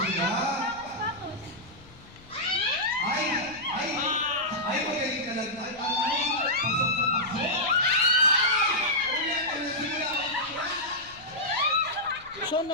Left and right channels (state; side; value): noise; left; rumble, 23 dB below the sound